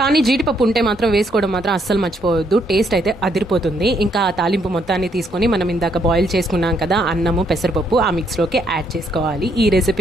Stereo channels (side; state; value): both; normal; correlation 0.72